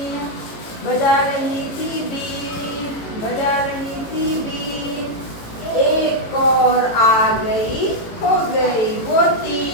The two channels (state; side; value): late; right; 18 ms